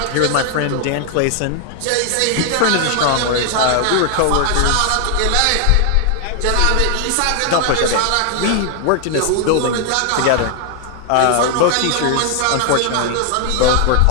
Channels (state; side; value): different; both; correlation 0.00